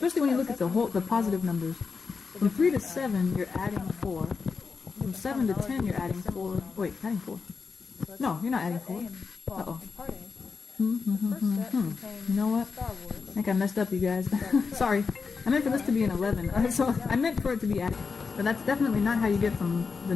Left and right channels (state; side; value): quieter; right; 5.0 dB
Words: when you look at the positive numbers. From 3 to 7, you're adding 4. From 7 to 10, you're adding 4. Wait, adding 4. No, you're not adding 4. Uh-oh. You know what? I think I messed up, you guys. Sorry. I meant for this to be an 11. So I meant for it to be added. But that's definitely not how you get from the